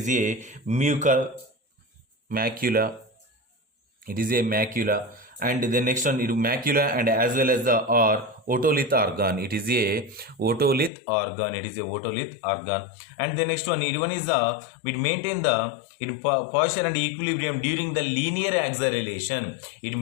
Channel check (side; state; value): right; drops out; at 10.9 s